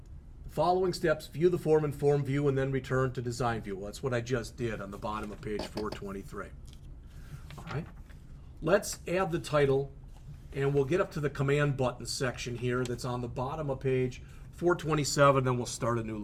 Following steps, view the form in Form View, and then return to Design View. Well, that's what I just did on the bottom of page 423. All right, let's add the title, and we'll get up to the Command Button section here that's on the bottom of page 427, then we'll start a new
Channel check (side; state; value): both; identical; correlation 1.00